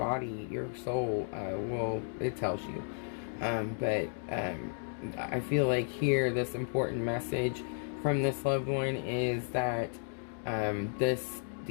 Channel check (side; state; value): right; silent; digital silence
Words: your soul it tells you. But I feel like here this important message from this loved one is that this